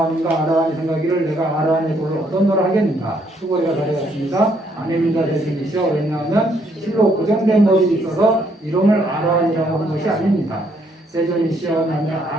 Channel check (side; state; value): both; normal; correlation 0.70